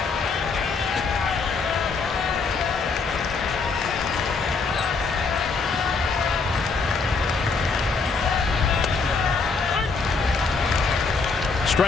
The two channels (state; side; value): quieter; right; 4.5 dB